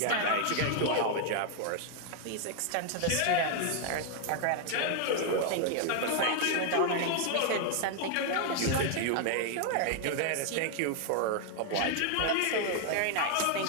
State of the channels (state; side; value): different; both; correlation 0.00